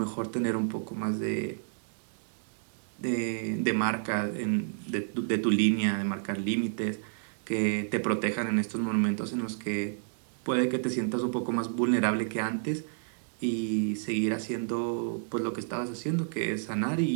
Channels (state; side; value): silent; left; digital silence